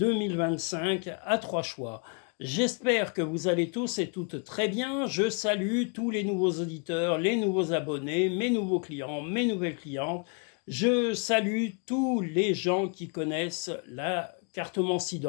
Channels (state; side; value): quieter; right; 38.4 dB